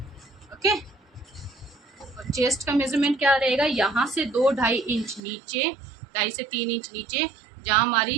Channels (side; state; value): left; drops out; at 5.2 s